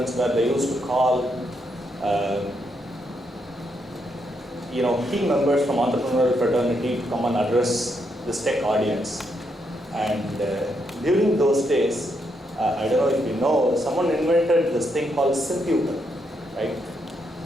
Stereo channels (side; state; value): both; normal; correlation 0.78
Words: where they used to call key members from entrepreneurial fraternity to come and address this tech audience. And during those days, I don't know if you know, someone invented this thing called Simputer, right?